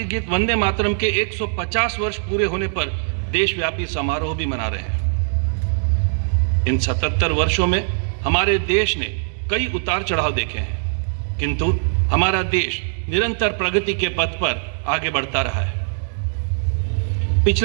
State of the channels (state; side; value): silent; left; digital silence